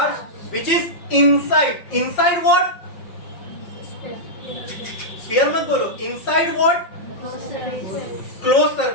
which is inside what, sphere मत बोलो, इनसाइड व्हाट, क्लोज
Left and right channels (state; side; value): late; right; 5.6 ms